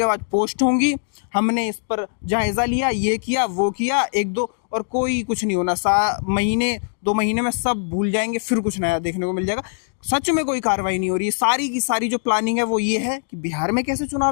बाद पोस्ट होंगी, हमने इस पर जायजा लिया, ये किया, वो किया, 1-2, और कोई कुछ नहीं होना। 2 महीने में सब भूल जाएंगे, फिर कुछ नया देखने को मिल जाएगा। सच में कोई कार्रवाई नहीं हो रही है। सारी की सारी जो प्लानिंग है वो ये है कि बिहार में कैसे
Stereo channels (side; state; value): right; silent; digital silence